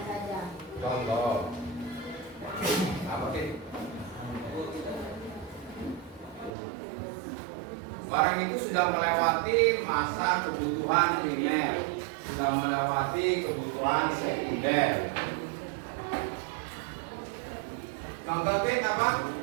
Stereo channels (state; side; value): drops out; left; at 6.5 s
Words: saja. Contoh. Apa sih? Barang itu sudah melewati masa kebutuhan primer, sudah melewati kebutuhan sekunder. Contoh apa?